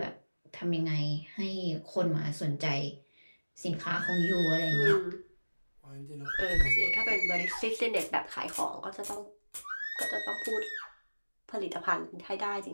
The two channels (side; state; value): both; inverted; correlation -1.00